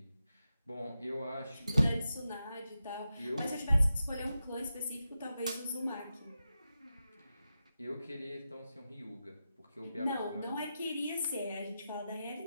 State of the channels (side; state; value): both; inverted; correlation -0.90